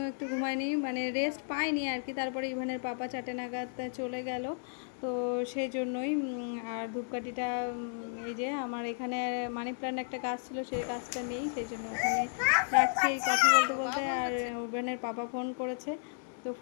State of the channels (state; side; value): silent; right; digital silence